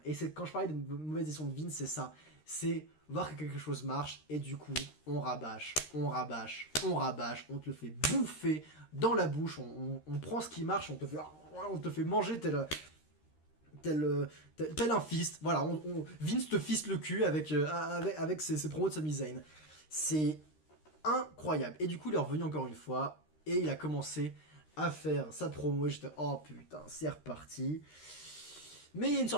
et c'est quand je parlais de mauvaise gestion de Vince, c'est ça, c'est voir que quelque chose marche, et du coup, on rabâche, on te le fait bouffer dans la bouche, on prend ce qui marche, on te fait manger tel un fist, voilà, Vince te fiste le cul avec ses promos de Sami Zayn. C'est incroyable. Et du coup, il est revenu encore une fois, et il a commencé à faire sa promo, et j'étais, oh putain, c'est reparti. Mais il y a une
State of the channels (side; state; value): right; late; 13 ms